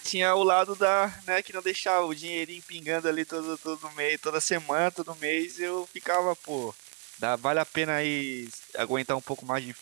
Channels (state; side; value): quieter; left; 30.3 dB